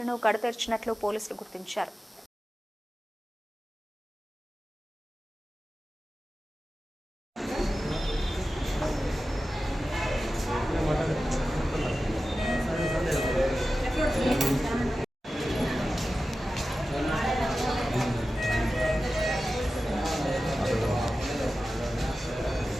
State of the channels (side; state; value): both; normal; correlation 0.94